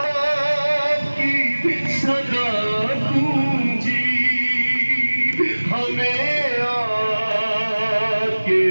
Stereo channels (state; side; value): inverted; both; correlation -1.00